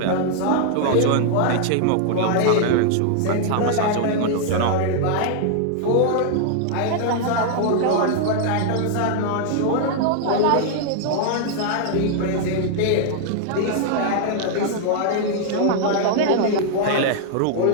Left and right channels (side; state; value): both; different; correlation -0.01